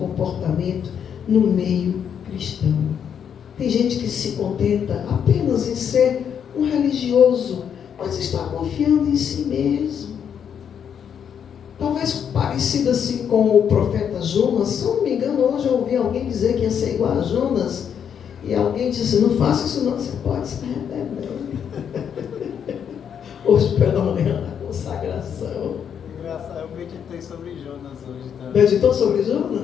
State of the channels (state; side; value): quieter; right; 8.1 dB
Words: no meio cristão. Tem gente que se contenta apenas em ser um religioso, mas está confiando em si mesmo. Talvez parecido assim com o profeta Jonas. Se eu não me engano, hoje eu ouvi alguém dizer que ia ser igual a Jonas. E alguém disse, não faça isso não, você pode se arrepender. Hoje pela manhã, na consagração. Engraçado, eu meditei sobre Jonas hoje também. Meditou sobre